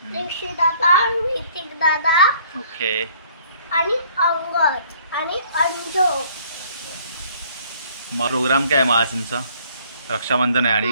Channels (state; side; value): inverted; both; correlation -0.59